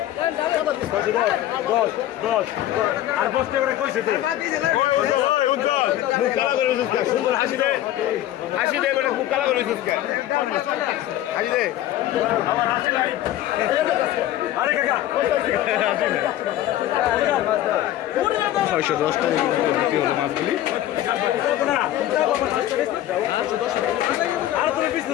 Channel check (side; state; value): right; quieter; 13.4 dB